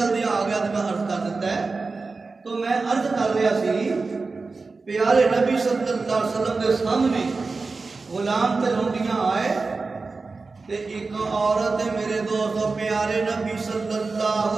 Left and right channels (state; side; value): quieter; left; 4.0 dB